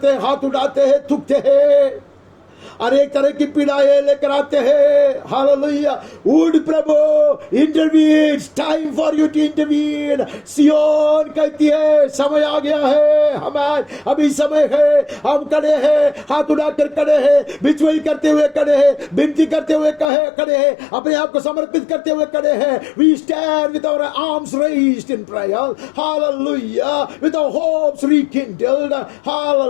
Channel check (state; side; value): drops out; right; at 20.1 s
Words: हैं, हाथ उठाते हैं, थूकते हैं, अनेक तरह की पीड़ाएं लेकर आते हैं. हालेलुया. वुड प्रभु intervene, time for you to intervene. Zion कहती है समय आ गया है, हमारे अभी समय है, हम खड़े हैं, हाथ उठाकर खड़े हैं, बिचवाई करते हुए खड़े हैं, विनती करते हुए खड़े हैं, अपने आप को समर्पित करते हुए खड़े हैं. We stand with our arms raised in prayer. Hallelujah. With our hopes rekindled.